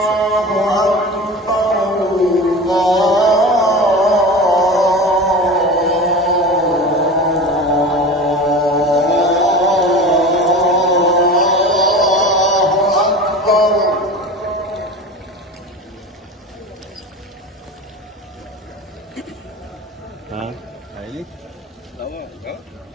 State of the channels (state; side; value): normal; both; correlation 0.32